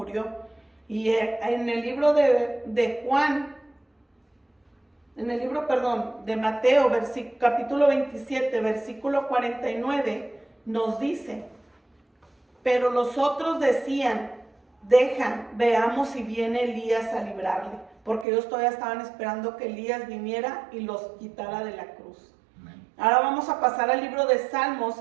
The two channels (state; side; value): drops out; left; at 18.2 s